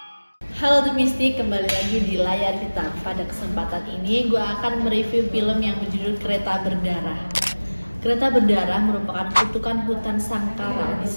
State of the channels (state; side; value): inverted; both; correlation -1.00